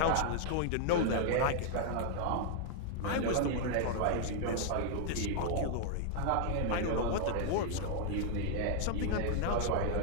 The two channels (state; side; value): different; both; correlation 0.00